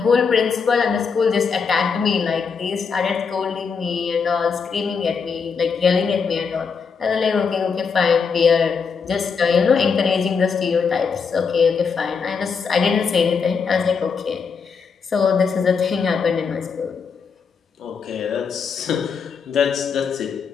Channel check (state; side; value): quieter; right; 5.7 dB